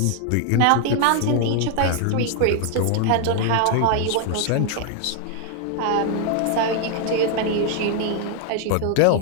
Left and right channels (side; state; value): both; different; correlation 0.00